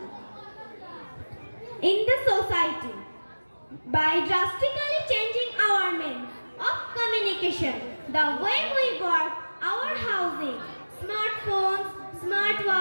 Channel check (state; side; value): inverted; both; correlation -1.00